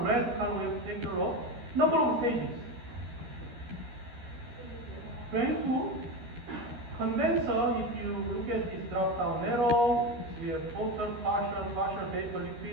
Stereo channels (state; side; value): late; left; 13 ms